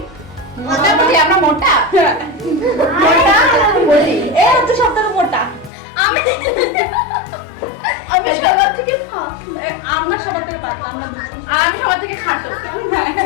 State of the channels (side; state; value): right; drops out; at 5.7 s